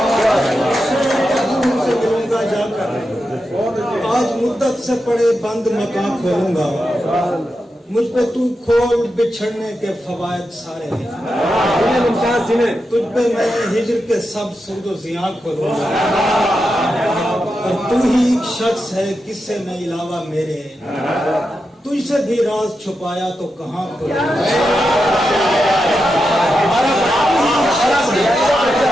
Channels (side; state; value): both; normal; correlation 0.88